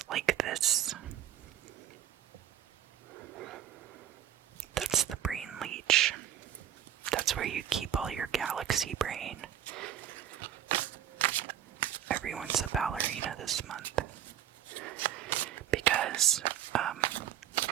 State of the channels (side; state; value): left; quieter; 11.0 dB